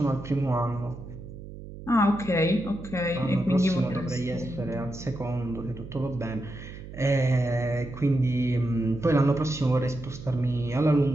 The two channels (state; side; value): noise; right; hum, 13 dB below the sound